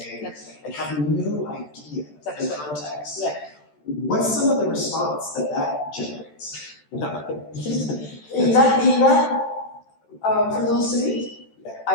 and have no idea the context. Right. What's some of the response that generates? in that for those three,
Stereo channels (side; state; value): right; late; 13 ms